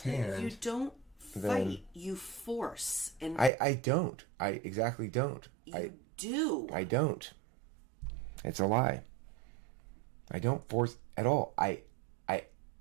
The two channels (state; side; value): drops out; left; at 3.5 s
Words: hand... You don't then fight. You force. And I don't. I exactly don't. you do. I don't. It's a lie. I don't force at all. I